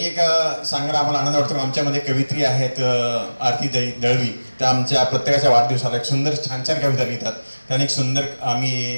एक सांगायला आम्हाला आनंद वाटतो. आमच्यामध्ये कवित्री आहेत आरती दळवी, त्या आमच्या प्रत्येकाच्या वाढदिवसाला एक सुंदर छान छान कविता लिहितात. त्याने एक सुंदर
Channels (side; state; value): both; inverted; correlation -1.00